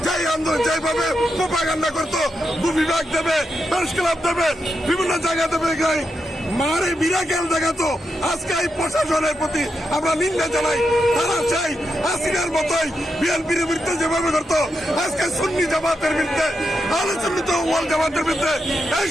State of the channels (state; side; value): normal; both; correlation 0.85